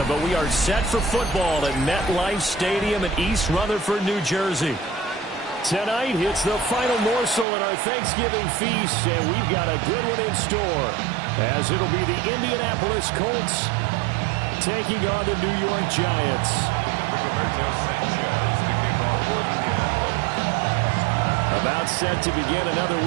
but we are set for football at MetLife Stadium in East Rutherford, New Jersey. Tonight, it's the final morsel in our Thanksgiving feast, and we've got a good one in store, as it'll be the Indianapolis Colts taking on the New York Giants. About set to begin another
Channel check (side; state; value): left; drops out; at 7.5 s